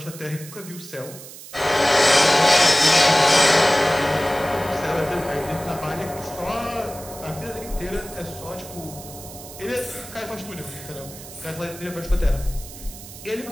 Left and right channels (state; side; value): noise; right; hiss, 15 dB below the sound